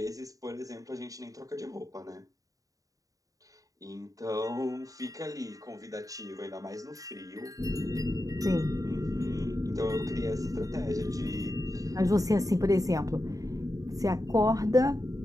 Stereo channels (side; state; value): left; late; 0.17 ms